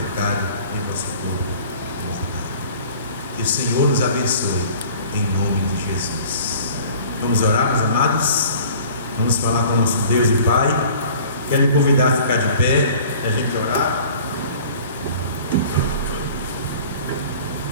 em vosso corpo mortal. Que o Senhor nos abençoe em nome de Jesus. Vamos orar, meus amados? Vamos falar com o nosso Deus e Pai. Quero lhe convidar a ficar de pé e a gente orar.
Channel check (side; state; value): both; inverted; correlation -0.47